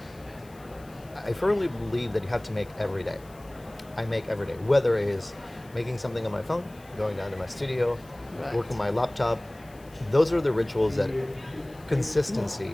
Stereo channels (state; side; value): noise; left; hiss, 26 dB below the sound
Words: I firmly believe that you have to make every day. I make every day, whether it is making something on my phone, going down to my studio, Right. working my laptop. Those are the rituals that